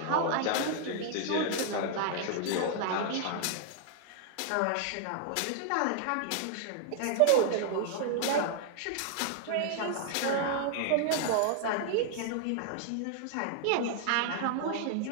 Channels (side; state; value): both; different; correlation 0.00